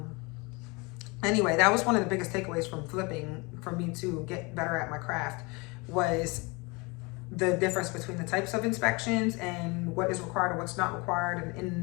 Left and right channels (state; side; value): quieter; right; 27.4 dB